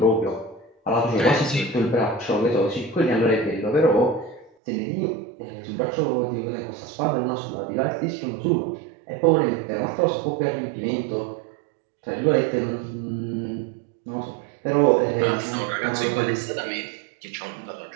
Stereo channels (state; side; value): drops out; left; at 4.5 s